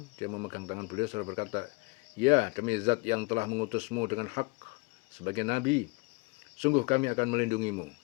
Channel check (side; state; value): right; quieter; 27.0 dB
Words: dia memegang tangan beliau seraya berkata, ya, demi zat yang telah mengutusmu dengan hak sebagai nabi, sungguh kami akan melindungimu